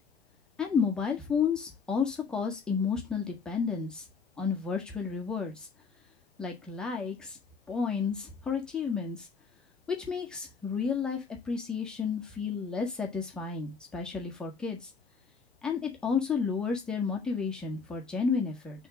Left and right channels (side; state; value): right; quieter; 5.4 dB